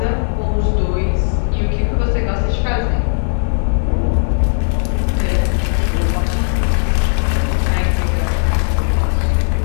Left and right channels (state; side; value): silent; right; 57 dB below the other